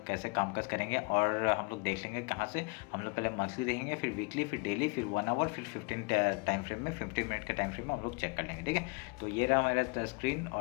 कैसे कामकाज करेंगे और हम लोग देख लेंगे कहाँ से। हम लोग पहले मंथली देखेंगे, फिर वीकली, फिर डेली, फिर 1 आवर, फिर 15 टाइम फ्रेम में 15 मिनट के टाइम फ्रेम में हम लोग चेक कर लेंगे। ठीक है, तो ये रहा मेरा स्क्रीन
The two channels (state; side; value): quieter; right; 32.6 dB